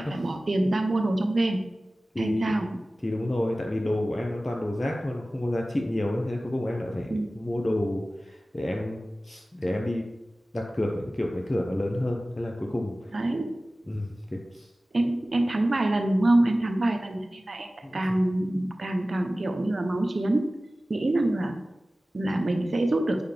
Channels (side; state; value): both; normal; correlation 0.97